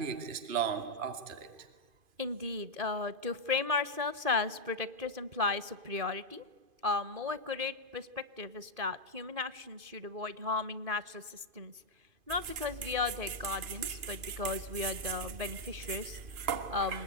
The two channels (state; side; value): late; left; 2.5 ms